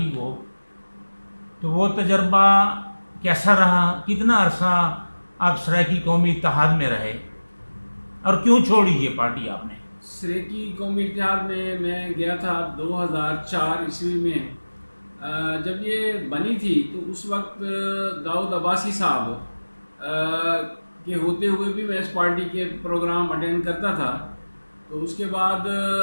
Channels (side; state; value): both; inverted; correlation -1.00